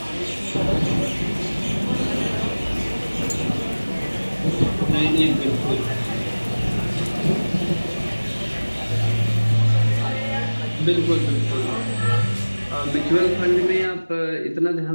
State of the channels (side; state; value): both; inverted; correlation -1.00